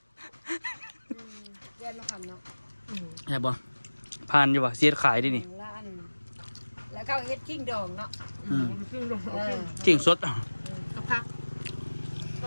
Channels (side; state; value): both; inverted; correlation -1.00